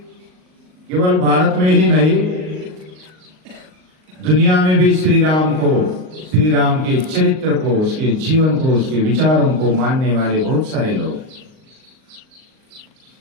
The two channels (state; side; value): late; left; 38 ms